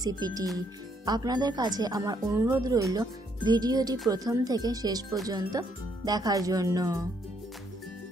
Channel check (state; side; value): normal; both; correlation 0.71